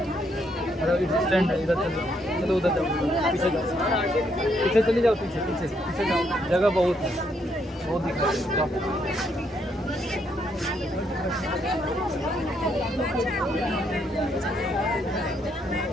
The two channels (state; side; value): normal; both; correlation 0.74